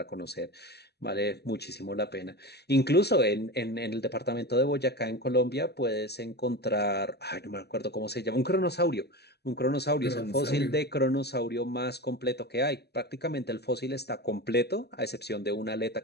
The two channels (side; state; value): right; late; 0.48 ms